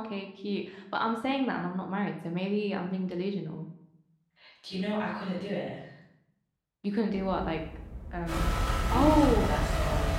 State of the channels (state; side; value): identical; both; correlation 1.00